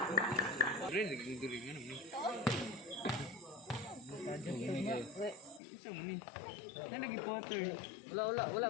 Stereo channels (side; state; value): right; drops out; at 5.6 s